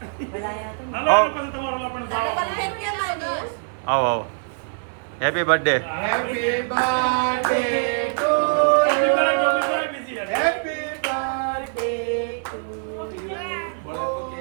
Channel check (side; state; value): left; silent; 63 dB below the other